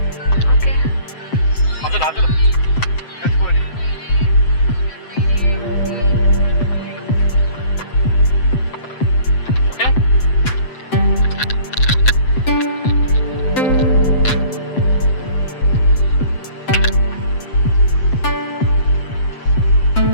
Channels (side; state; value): right; late; 7.7 ms